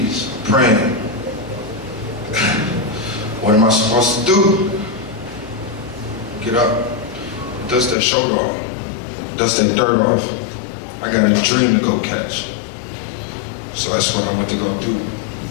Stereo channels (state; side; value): drops out; right; at 8.0 s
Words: praying. What am I supposed to do? Get up, dust that shoulder off, dust that dirt off. I got a dream to go catch. So that's what I went to go do.